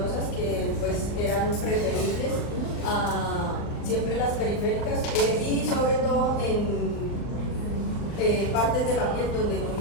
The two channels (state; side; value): late; right; 39 ms